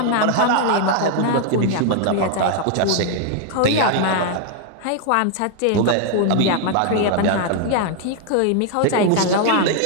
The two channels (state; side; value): different; both; correlation 0.00